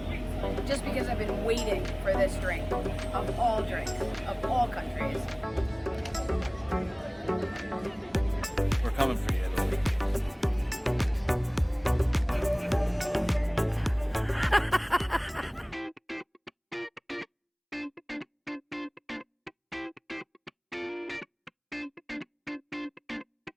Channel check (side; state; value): both; identical; correlation 1.00